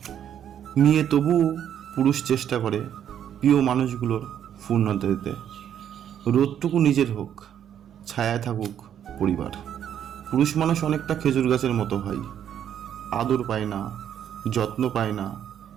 নিয়ে তবুও পুরুষ চেষ্টা করে প্রিয় মানুষগুলোর পূর্ণতা দিতে। রোদটুকু নিজের হোক, ছায়ায় থাকুক পরিবার। পুরুষ মানুষ অনেকটা খেজুর গাছের মতো হয়, আদর পায় না, যত্ন পায় না,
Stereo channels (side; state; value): left; quieter; 9.6 dB